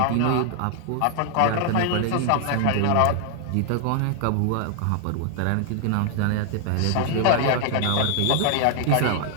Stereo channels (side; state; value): both; different; correlation 0.00